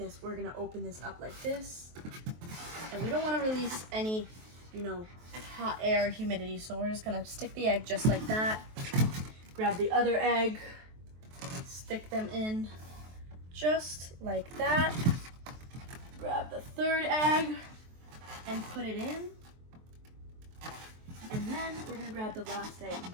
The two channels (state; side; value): late; left; 23 ms